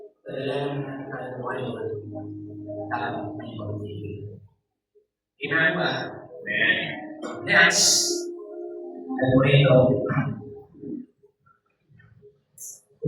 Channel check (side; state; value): both; identical; correlation 1.00